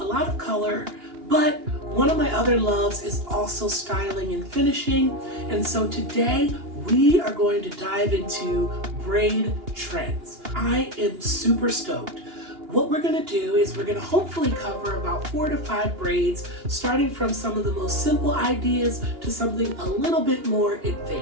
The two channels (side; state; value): left; late; 2.8 ms